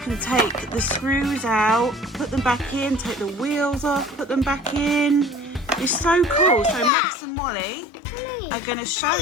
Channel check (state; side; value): drops out; right; at 6.9 s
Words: take the screws out, put them back in, take the wheels off, put them back in. It's so cool. So Max and Molly are going to show